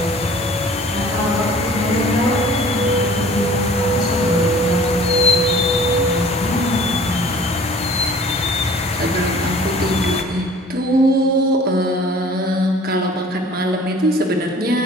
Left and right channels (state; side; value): normal; both; correlation 0.49